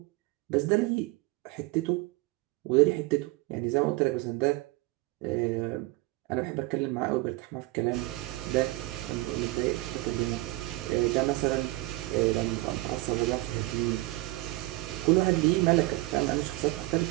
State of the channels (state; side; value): quieter; left; 20.7 dB